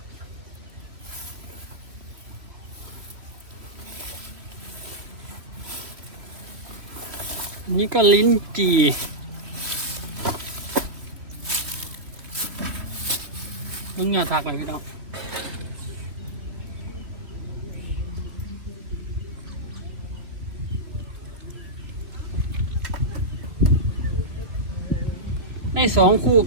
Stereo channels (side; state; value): left; late; 3.0 ms